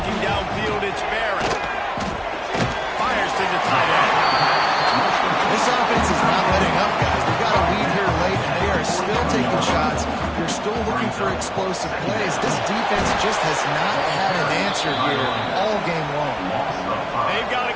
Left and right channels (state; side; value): identical; both; correlation 1.00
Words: downfield, it's Barrett. Fires to the tight end. This offense is not letting up, guys. They've got a lead here late, and they are still taking shots. They're still looking for explosive plays. This defense just has not had an answer here all game long. They've got to